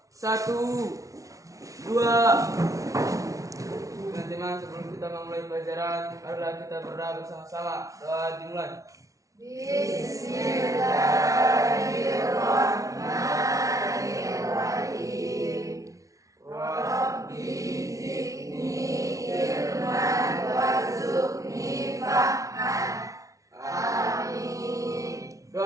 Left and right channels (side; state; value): left; late; 0.16 ms